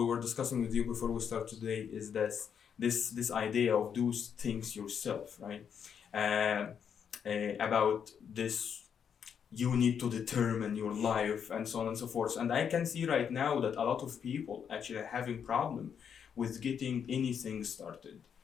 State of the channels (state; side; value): quieter; right; 7.6 dB